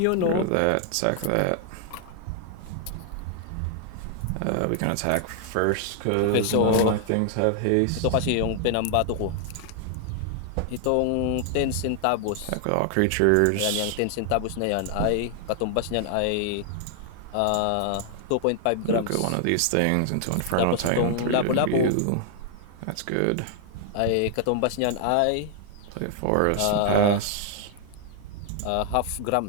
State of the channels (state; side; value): different; both; correlation 0.00